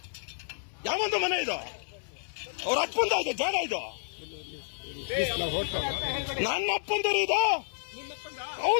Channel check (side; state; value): right; silent; 58 dB below the other